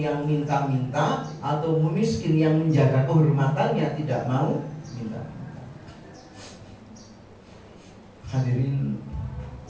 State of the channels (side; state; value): both; identical; correlation 1.00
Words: yang minta-minta atau miskin yang menjaga kehormatannya tidak mau minta. Hadirin,